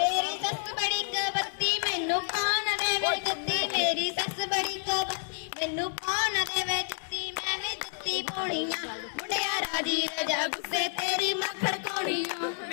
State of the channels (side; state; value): right; silent; digital silence